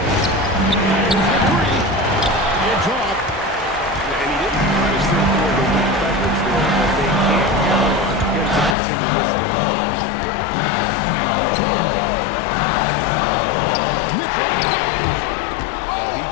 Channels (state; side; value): drops out; right; at 8.8 s